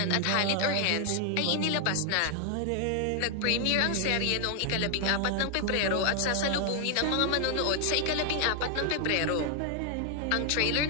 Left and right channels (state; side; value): different; both; correlation 0.00